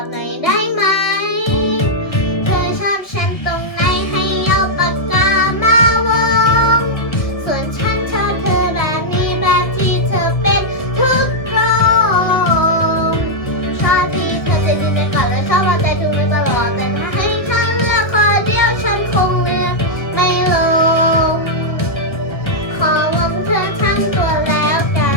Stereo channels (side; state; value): right; late; 1.7 ms